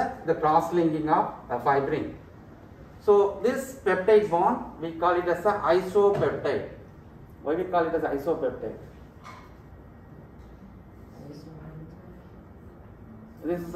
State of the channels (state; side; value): identical; both; correlation 1.00